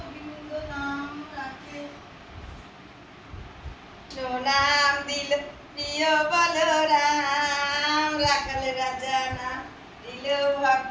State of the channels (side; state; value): both; identical; correlation 1.00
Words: নাম রাখে। নাম দিল প্রিয় বলরাম, রাখাল রাজা নাম দিল